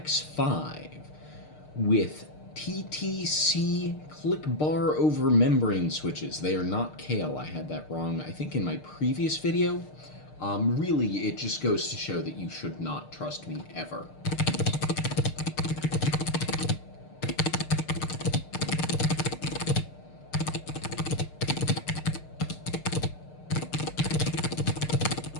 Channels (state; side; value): late; right; 6.6 ms